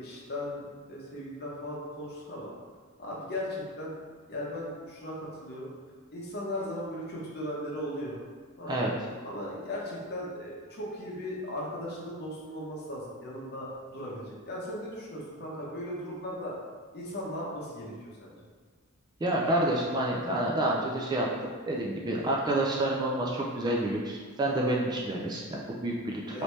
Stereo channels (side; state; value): both; normal; correlation 0.25